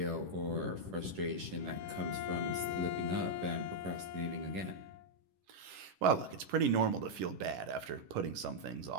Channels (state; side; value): late; left; 11 ms